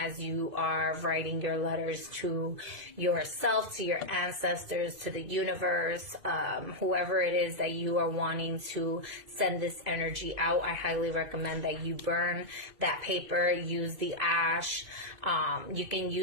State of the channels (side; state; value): left; late; 2.5 ms